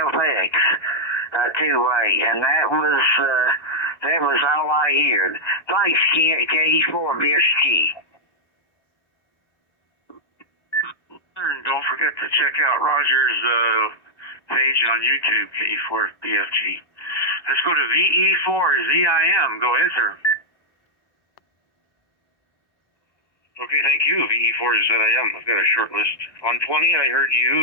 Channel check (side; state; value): right; late; 1.2 ms